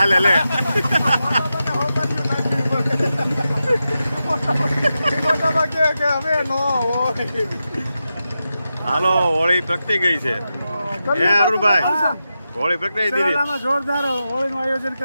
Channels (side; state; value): both; inverted; correlation -0.90